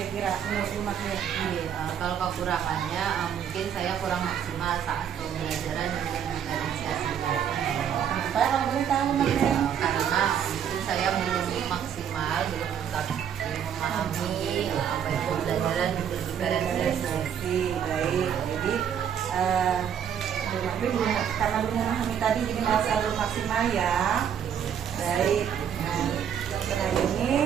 menurut Bu Magnin? Kalau kekurangannya mungkin saya kurang maksimal saat pembelajaran dengan diferensiasi. Kenapa kalau boleh tahu Bu Magnin? Karena mungkin saya belum maksimal, belum tetap memahami apa yang pembelajaran diferensiasi. Baik, jadi Bu Magnin karena belum memahami tadi jadi masih belum maksimal ya. Baik. Nah, setelah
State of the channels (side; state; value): left; quieter; 8.7 dB